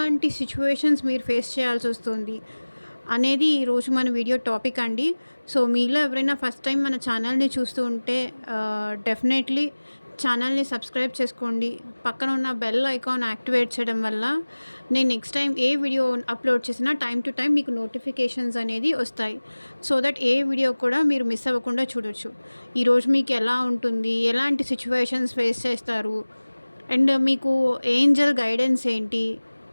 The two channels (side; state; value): both; inverted; correlation -1.00